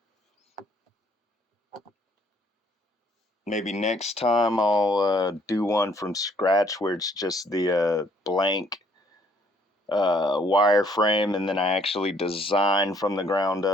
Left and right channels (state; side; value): normal; both; correlation 0.64